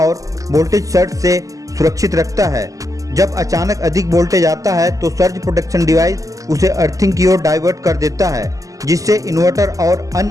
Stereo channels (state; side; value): late; left; 0.16 ms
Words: वोल्टेज सर्ज से सुरक्षित रखता है। जब अचानक अधिक वोल्टेज आता है तो सर्ज प्रोटेक्शन डिवाइस उसे अर्थिंग की ओर डाइवर्ट कर देता है, जिससे इन्वर्टर और